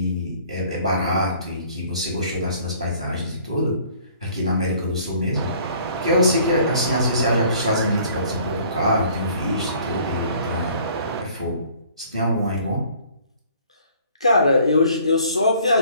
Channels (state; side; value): inverted; both; correlation -0.56